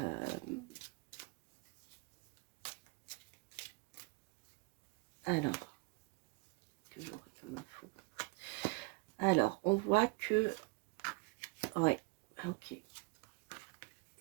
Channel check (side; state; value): left; quieter; 28.0 dB